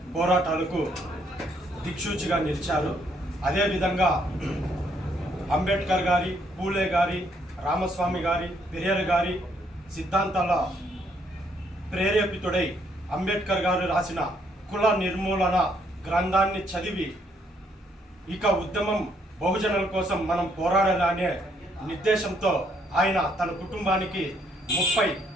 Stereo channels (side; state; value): both; normal; correlation 0.70